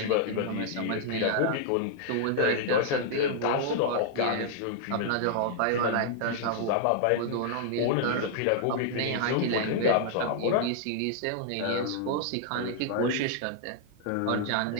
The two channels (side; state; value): both; different; correlation -0.01